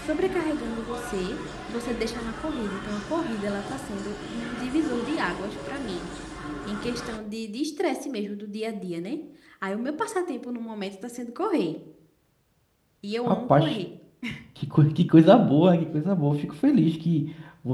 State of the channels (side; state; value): both; identical; correlation 1.00